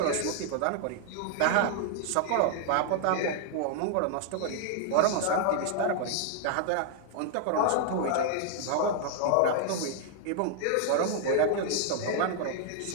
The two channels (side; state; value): both; different; correlation -0.01